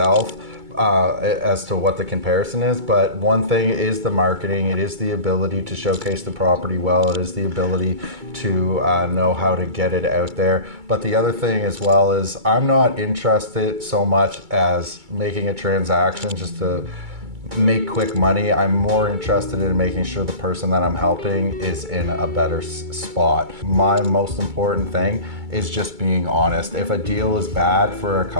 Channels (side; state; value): left; late; 2.3 ms